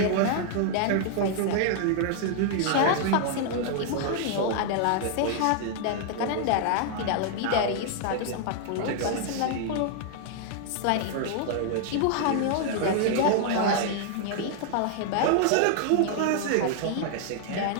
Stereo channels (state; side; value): different; both; correlation -0.01